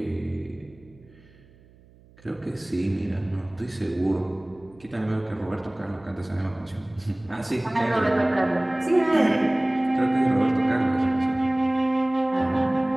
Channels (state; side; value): noise; right; hum, 27 dB below the sound